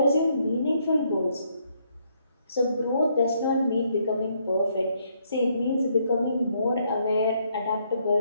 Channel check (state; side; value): inverted; both; correlation -0.72